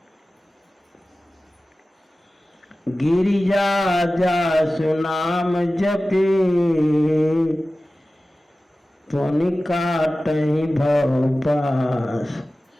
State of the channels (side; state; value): both; normal; correlation 0.96